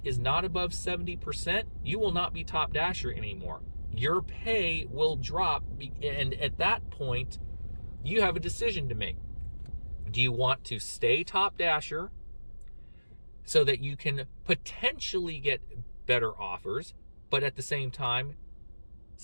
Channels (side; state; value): both; inverted; correlation -1.00